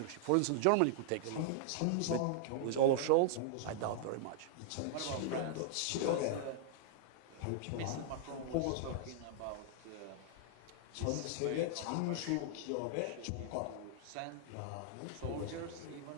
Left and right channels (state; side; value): different; both; correlation -0.01